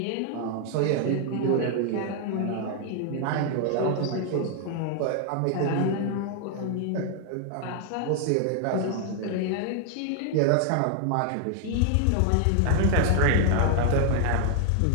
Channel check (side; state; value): both; different; correlation 0.00